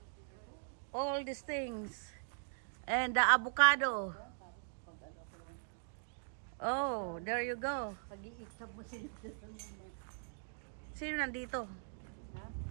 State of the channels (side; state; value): left; silent; digital silence